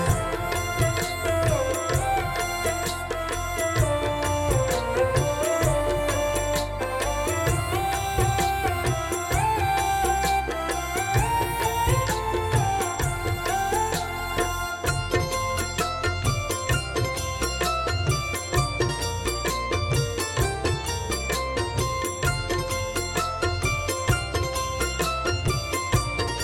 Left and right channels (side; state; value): both; identical; correlation 1.00